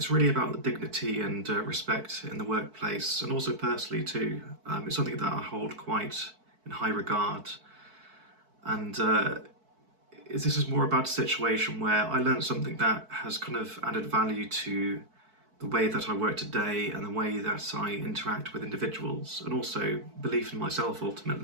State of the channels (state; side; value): late; left; 4.6 ms